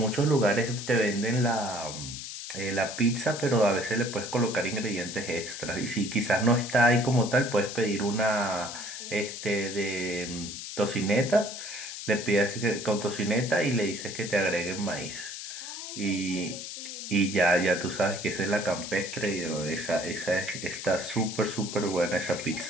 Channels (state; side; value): noise; left; hiss, 8 dB below the sound